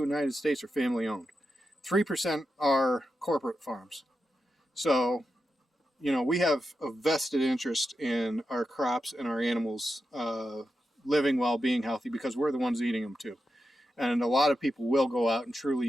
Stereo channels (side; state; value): both; normal; correlation 0.89